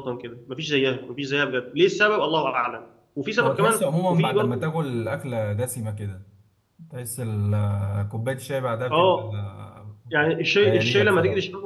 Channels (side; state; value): both; identical; correlation 1.00